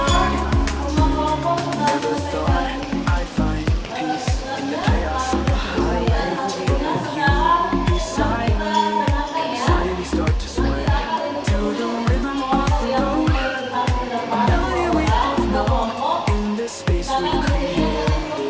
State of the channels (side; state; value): both; identical; correlation 1.00